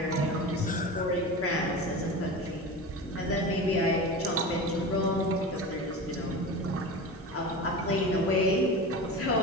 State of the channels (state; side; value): normal; both; correlation 0.29